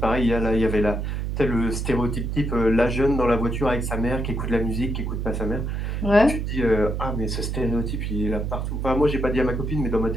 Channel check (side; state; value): right; noise; hum, 2 dB below the sound